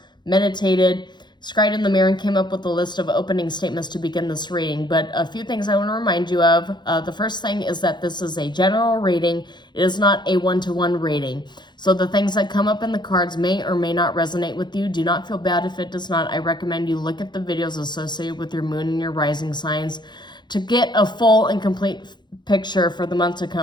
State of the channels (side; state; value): right; late; 0.21 ms